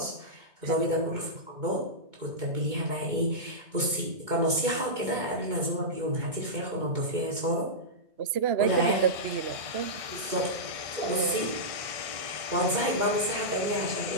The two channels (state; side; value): late; left; 2.2 ms